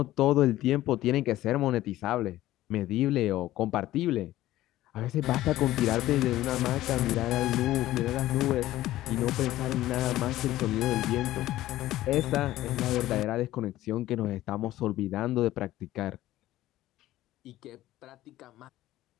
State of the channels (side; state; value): right; quieter; 15.2 dB